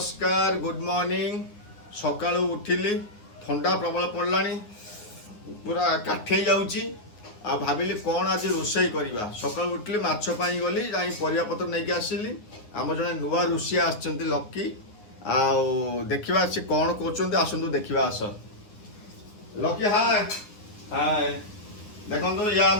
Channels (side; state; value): right; late; 9.3 ms